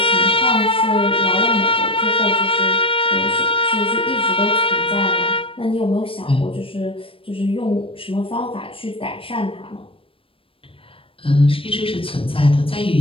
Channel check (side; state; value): right; late; 0.26 ms